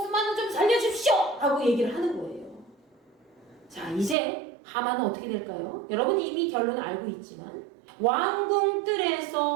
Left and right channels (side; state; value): left; drops out; at 4.2 s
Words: 좀 살려주십시오 라고 얘기를 하는 거예요. 자, 이제 하만은 어떻게 될까요? 여러분 이미 결론을 알고 있지만 왕궁